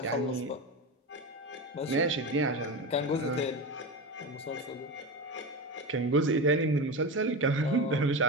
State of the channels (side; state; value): both; normal; correlation 0.21